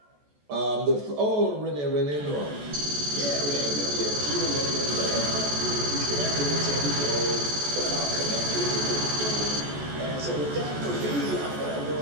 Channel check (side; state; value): left; late; 14 ms